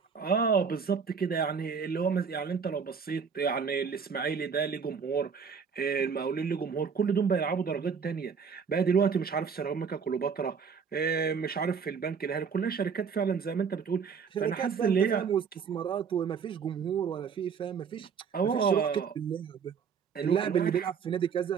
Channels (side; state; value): left; quieter; 6.2 dB